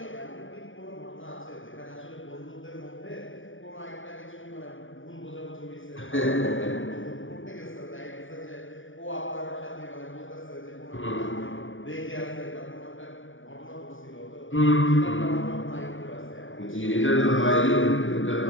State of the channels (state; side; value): late; right; 0.57 ms